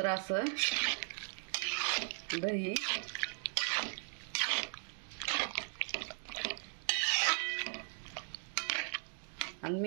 असं दही आणि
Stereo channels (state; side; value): silent; left; 53 dB below the other